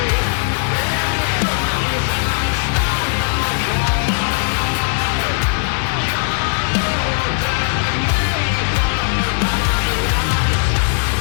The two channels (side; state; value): right; silent; 67 dB below the other